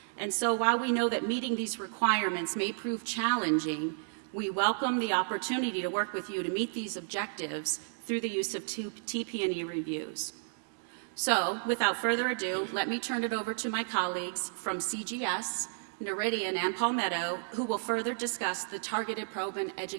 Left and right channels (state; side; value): silent; left; digital silence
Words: And so while we know that meeting these requirements may prove challenging, we welcome the opportunity to work with you to meet these objectives through the use of TP&E reviews. So, without further ado, let me turn it over to my colleagues from CGS, Noridian, and Palmetto, who will further discuss the targeted probe and